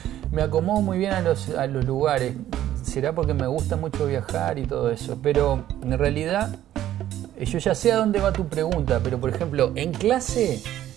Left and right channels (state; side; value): quieter; left; 12.5 dB